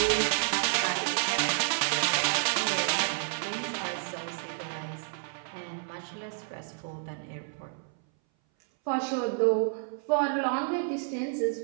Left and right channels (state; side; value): silent; left; 58 dB below the other